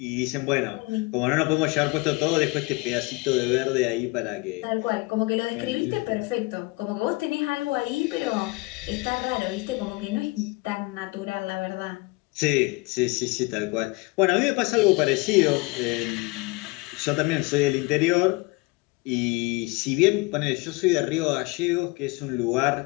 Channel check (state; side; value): quieter; right; 25.2 dB